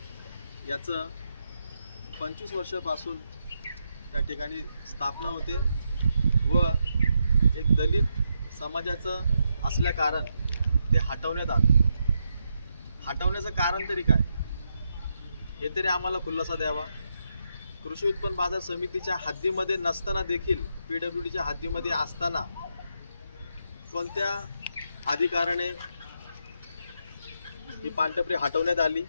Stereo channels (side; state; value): both; inverted; correlation -0.82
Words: याचं 25 वर्षापासून त्या ठिकाणी स्थापना होते व एक दलित समाजाचं असल्या कारण ते हटवण्यात आलं। हटवण्याचं कारण तरी काय हे तरी आम्हाला खुलासा द्यावा। कृषी उत्पन्न बाजार समितीच्या हद्दीमध्ये नसताना देखील पीडब्ल्यूडीच्या हद्दीमध्ये असताना कोणत्या अधिकाराने ही पानटपरी हटवण्यात आली